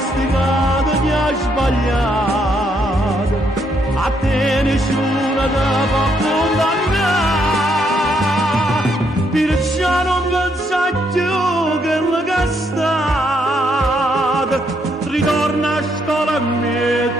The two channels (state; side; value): normal; both; correlation 0.74